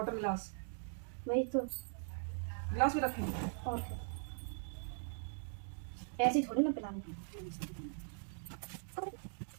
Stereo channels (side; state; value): left; silent; digital silence